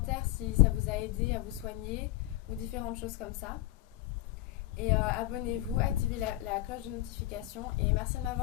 si ça vous a aidé à vous soigner ou différentes choses comme ça. Et abonnez-vous, activez la cloche de notification et merci de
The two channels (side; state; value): right; quieter; 16.1 dB